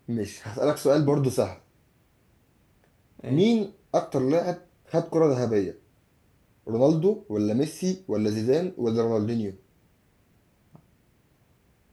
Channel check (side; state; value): both; identical; correlation 1.00